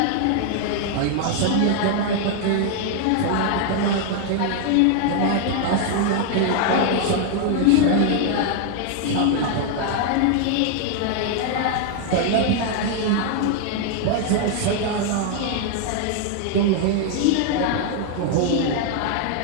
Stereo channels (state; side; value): different; both; correlation 0.00